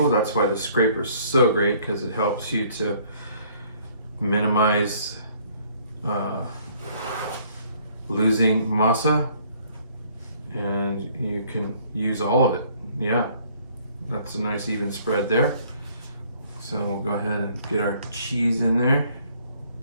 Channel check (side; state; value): both; inverted; correlation -0.61